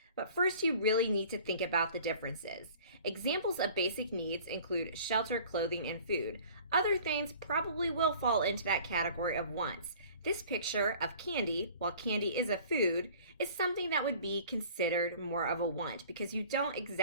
But first, you really need to think about the differences. Examples of basic needs include shelter, clothing, and food. Other things probably will fall into that category of wants. This picture of candy, while candy is a food, is something that would be considered more of a want because you don't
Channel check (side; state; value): both; inverted; correlation -0.48